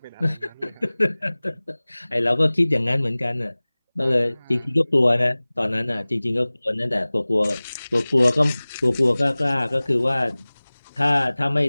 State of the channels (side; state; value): both; inverted; correlation -1.00